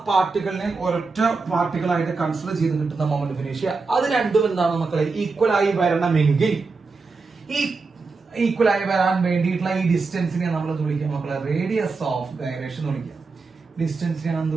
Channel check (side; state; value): left; quieter; 4.2 dB